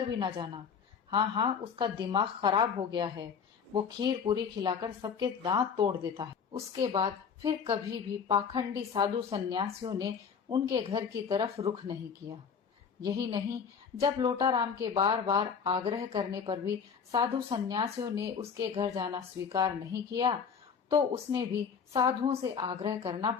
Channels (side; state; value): right; quieter; 6.6 dB